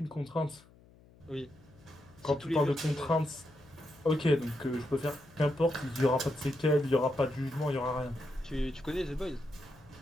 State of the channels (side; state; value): left; noise; hum, 26 dB below the sound